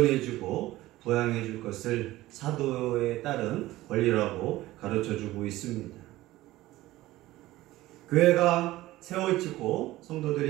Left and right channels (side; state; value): left; quieter; 16.9 dB